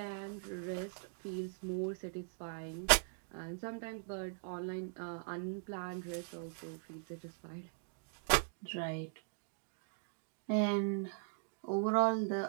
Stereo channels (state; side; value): silent; left; digital silence